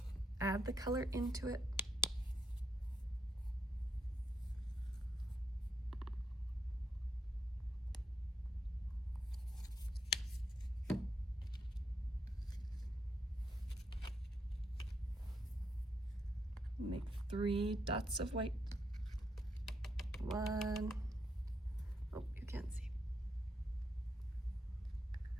add the color into it. Make 3 dots of white. 1, oh, you can't see.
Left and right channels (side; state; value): both; normal; correlation 0.78